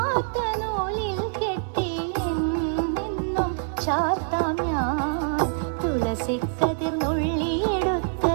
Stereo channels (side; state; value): left; silent; digital silence